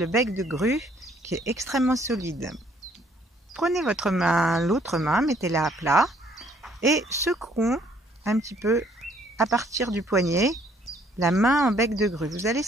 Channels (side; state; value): both; normal; correlation 0.64